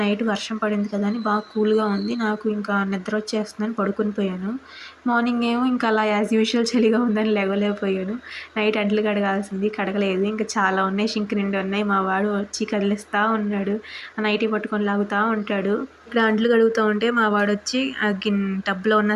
నైట్ వర్షం పడింది కదా అని బాగా కూల్గా ఉంది. నాకు ఇంకా నిద్ర వచ్చేస్తుందని పడుకొని పోయాను. మార్నింగ్ ఏమో ఇంకా అలా యాజ్ యూజువల్ చలిగా ఉందని లేవలేకపోయాను. నైట్ అంట్లు కడగాల్సింది కడగలేదు. ఇంకా చాలా ఉన్నాయి, షింక్ నిండి ఉన్నాయి. మా వాడు వచ్చి కదిలిస్తూ ఉన్నాడు, ఆ నైటీ పట్టుకొని లాగుతూ ఉంటాడు. ఇక్కడ అంట్లు కడుగుతూ ఉంటే మా వాడు వచ్చి ఆ టబ్లో ఉన్న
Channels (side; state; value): both; identical; correlation 1.00